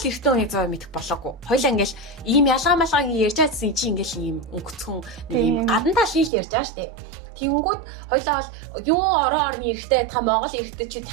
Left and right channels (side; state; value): left; drops out; at 6.3 s